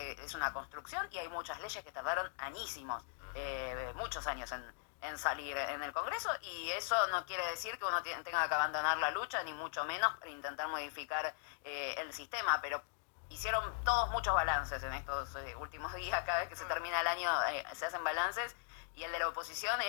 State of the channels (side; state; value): right; silent; digital silence